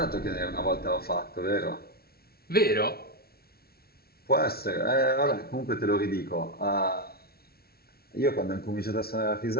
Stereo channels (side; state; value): right; late; 0.45 ms